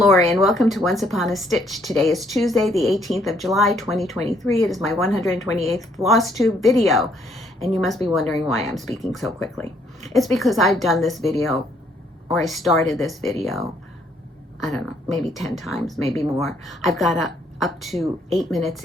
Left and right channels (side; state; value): both; normal; correlation 0.68